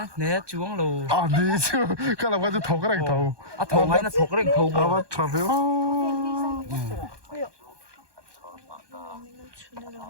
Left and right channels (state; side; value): late; left; 1.2 ms